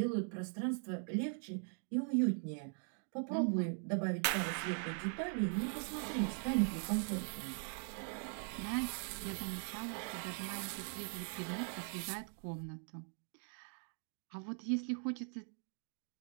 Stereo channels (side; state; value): left; silent; 50 dB below the other